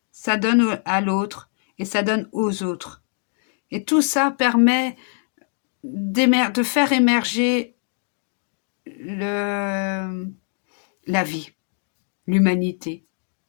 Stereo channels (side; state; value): right; silent; 63 dB below the other